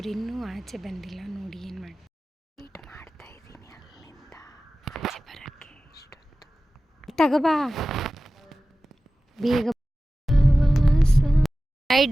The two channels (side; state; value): both; normal; correlation 0.96